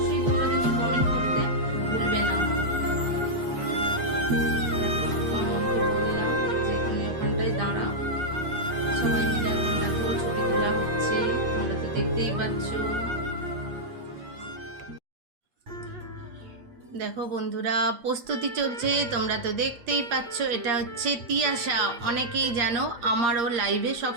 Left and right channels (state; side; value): late; left; 8.5 ms